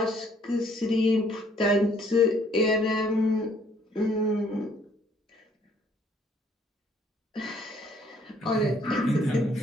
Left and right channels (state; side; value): normal; both; correlation 0.63